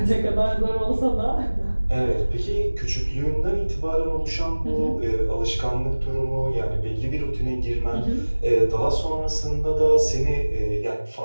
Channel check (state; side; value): inverted; both; correlation -1.00